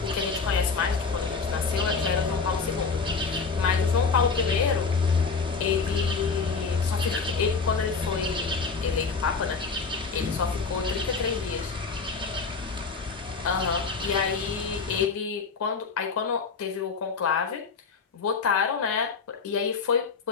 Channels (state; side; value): quieter; right; 4.9 dB